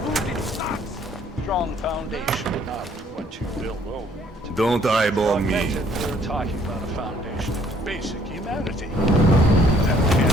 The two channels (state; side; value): normal; both; correlation 0.62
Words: Strong foundation, not what you build over. Don't eyeball me. We're talking about a foundation of basic humanity. That